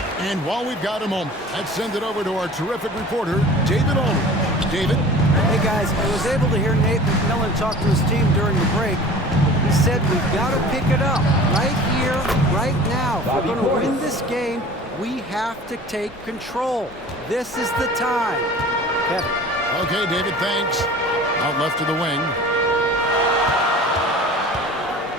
And while we've got a moment, let's send it over to our terrific reporter, David Olney. David? Hey guys, I was able to hear Nate McMillan talk to his team during the break. He said we've got to pick it up right here, right now. If we're going to win this game, we have to take control. This is the time. Kevin. Okay, David, thanks. Out left to the wing.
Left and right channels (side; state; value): both; normal; correlation 0.42